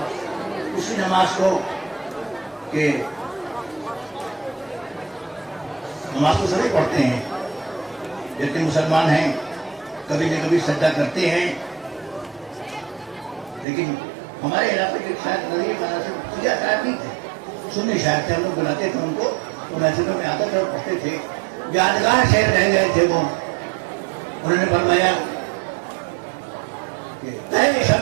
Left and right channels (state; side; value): drops out; left; at 13.7 s